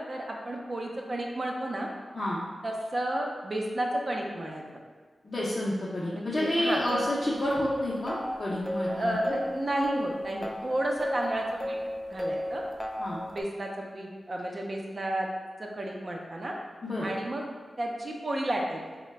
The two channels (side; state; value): both; normal; correlation 0.93